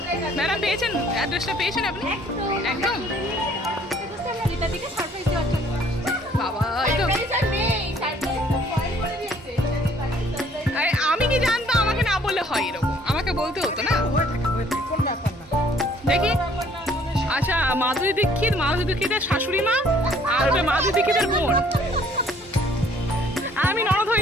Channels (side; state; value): both; normal; correlation 0.60